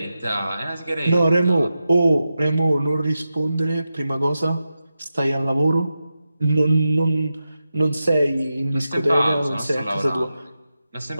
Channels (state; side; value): inverted; both; correlation -0.91